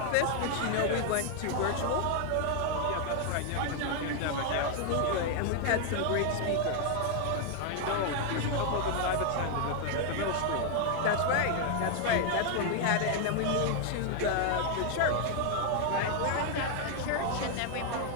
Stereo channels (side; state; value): both; different; correlation 0.00